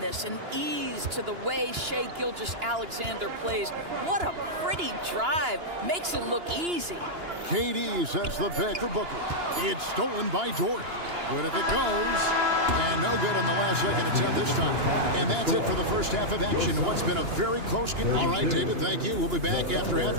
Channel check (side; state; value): left; late; 2.9 ms